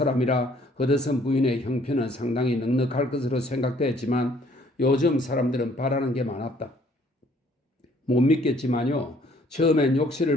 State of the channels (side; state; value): both; normal; correlation 0.61